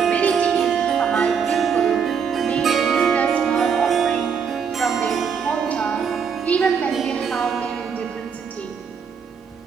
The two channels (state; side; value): quieter; left; 6.6 dB